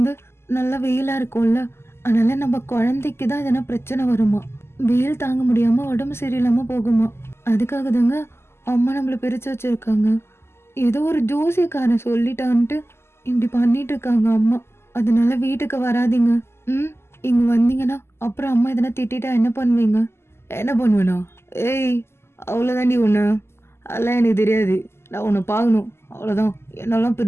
நல்லா வெயிலா இருக்கும்ல, அதனால நம்ம குழந்தைக்கு தான் எதனா பிரச்சனை வருமா. வெயில் தாங்க முடியாம உடம்பு சரியில்லாம போகுமா. அதுக்காக தாங்க அம்மா நம்மள பிரிச்சு வச்சிருக்காங்க. ஏதோ ஒரு ஜோசியக்காரன் சொல்லிட்டான்ட்டு இப்படி பண்ணிட்டு இருக்காங்க அம்மா. அதனால வீட்டுக்கு வராதீங்க. இங்க வந்தீங்கன்னா அப்புறம் அம்மா எதனா திட்டா என்ன பண்ணுவீங்க? என்ன பண்ணுவேனா? ஏய், அவ்வளோதாண்டி ஒன்று. அதெல்லாம் எனக்கு தெரியாது. நான் உன்னை பார்க்கணும், அவ்வளோதான். என்னாலாம்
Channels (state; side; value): late; right; 0.12 ms